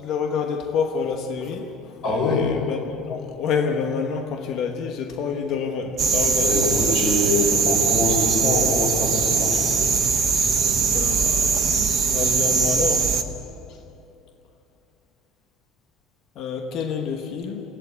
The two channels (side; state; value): both; normal; correlation 0.50